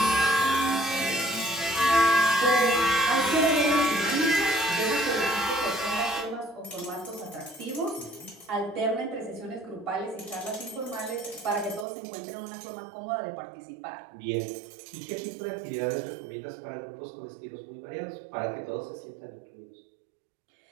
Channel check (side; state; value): left; drops out; at 11.9 s